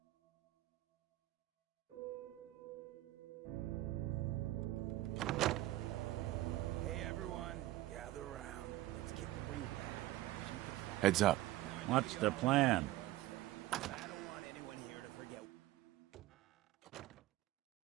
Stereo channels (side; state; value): left; quieter; 16.1 dB